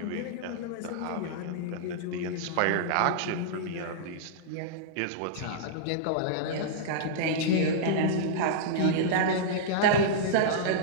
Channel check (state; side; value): different; both; correlation -0.03